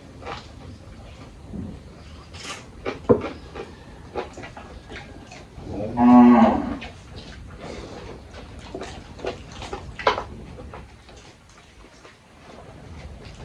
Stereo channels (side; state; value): both; identical; correlation 1.00